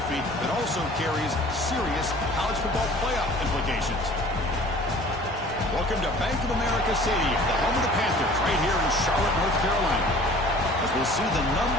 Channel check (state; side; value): normal; both; correlation 0.48